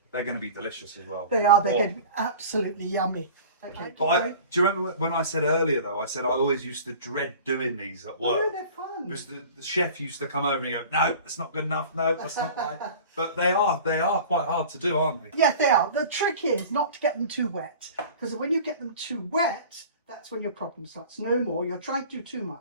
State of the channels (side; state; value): both; inverted; correlation -0.41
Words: They're going to be delicious as well. They are. They're Oh. going to be absolutely yummy. Okay. But do you remember when I said earlier though? I said I always used to dread doing these at work. No, they're fun. Because the chef used to come over and go, no, that's not good enough. No, that's not right. But they are quite hard to do, aren't they? Yeah, they are. The trick is not to get them too wet. Because when you get them too wet, that's when your problem starts. No more. You're trying to do too